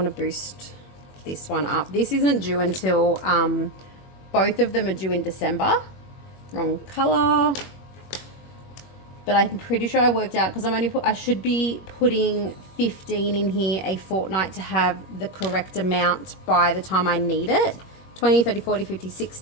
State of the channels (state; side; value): late; right; 21 ms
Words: to boost this one up. This isn't due until both of them are due in December. Wrong color. But I'm pretty sure I worked out because I should be putting 15 in here a fortnight to have the correct amount by the time I need it. 20, 30, 40, 50,